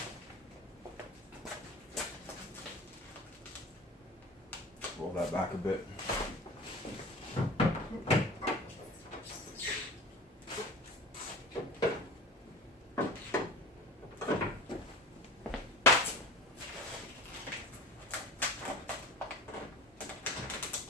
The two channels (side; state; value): both; normal; correlation 0.37